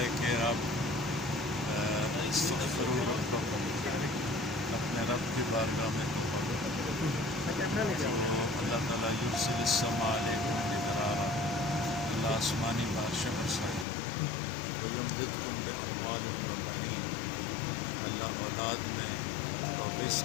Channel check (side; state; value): right; drops out; at 13.9 s